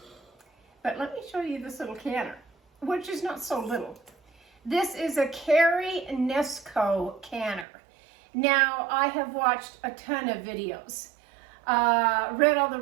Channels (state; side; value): drops out; left; at 7.7 s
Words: but let me show you this little canner, which is not so little. This is a Carry Nesco canner. Now, I have watched a ton of videos, read all the